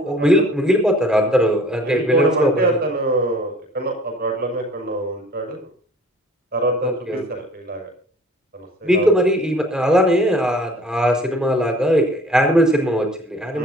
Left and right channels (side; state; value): both; normal; correlation 0.51